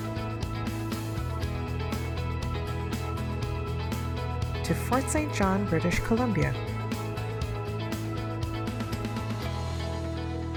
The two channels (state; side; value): identical; both; correlation 1.00